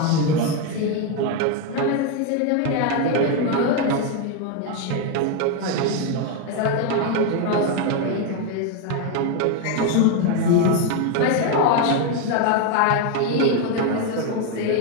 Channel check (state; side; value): different; both; correlation 0.02